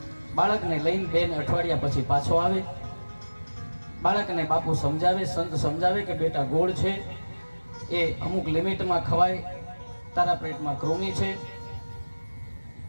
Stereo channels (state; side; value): inverted; both; correlation -1.00